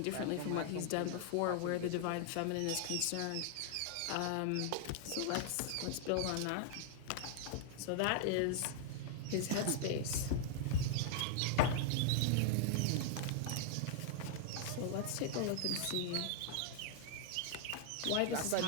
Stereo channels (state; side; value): different; both; correlation 0.00